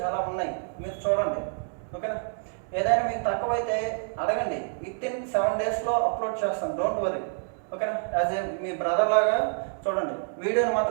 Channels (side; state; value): left; silent; digital silence